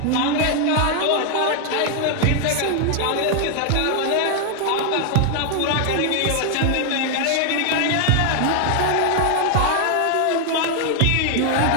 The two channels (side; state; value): both; different; correlation 0.00